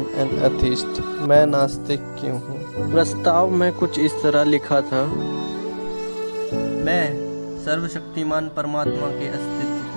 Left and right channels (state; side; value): inverted; both; correlation -1.00